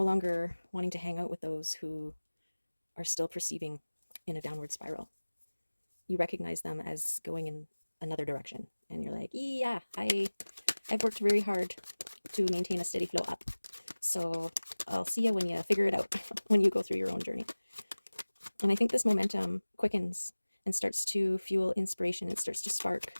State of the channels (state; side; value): inverted; both; correlation -1.00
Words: longer wanting to hang out with those who are still perceiving in a downward spiral. You recognize them as going in another direction, and you're like, yeah, I've worked very hard to maintain a steady flow up, so I'll see you when you figure it out, when you go through your own journey. And I think this momentum quickens and starts to fuel inspiration. It starts to spark